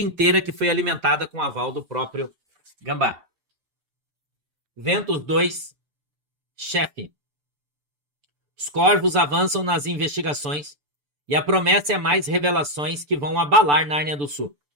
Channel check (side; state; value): left; late; 6.9 ms